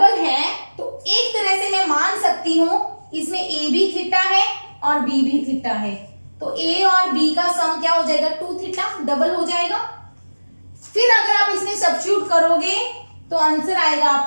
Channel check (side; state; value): both; inverted; correlation -1.00